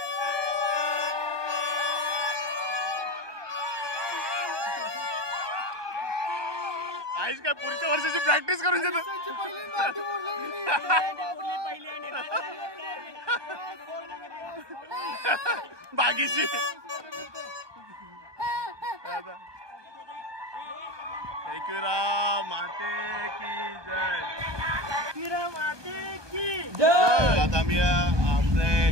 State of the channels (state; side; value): late; left; 1.2 ms